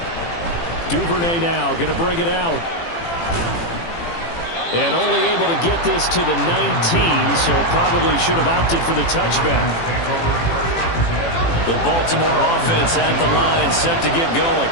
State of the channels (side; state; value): right; late; 18 ms